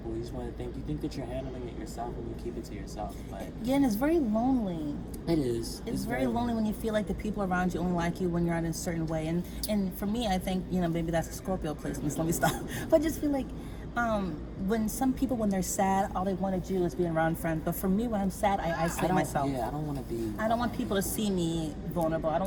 You just want to you think that you're handling it yourself, and you keep it to yourself. But yeah, and it's very lonely. it is. It's very lonely when you feel like the people around you only like you when you're in a certain way. And for me, I think, maybe that's a Scorpio placement. Let me stop. But I just feel like when some people, when they're sad, all they want to do is be around friends. But for me, when I'm sad, I isolate myself. Yeah, I don't want to be. I don't want people to see me vulnerable. I don't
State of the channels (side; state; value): both; identical; correlation 1.00